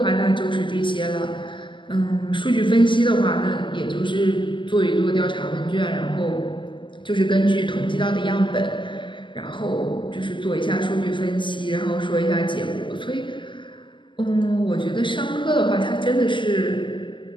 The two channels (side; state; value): right; late; 0.24 ms